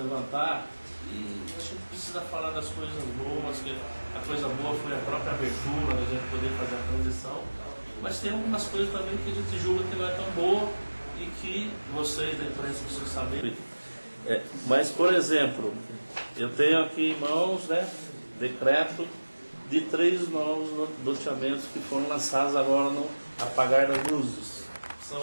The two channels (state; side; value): inverted; both; correlation -1.00